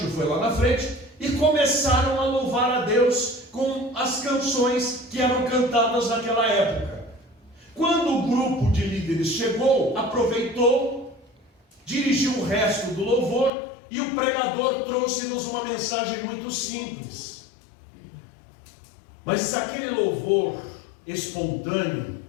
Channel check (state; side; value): drops out; right; at 13.5 s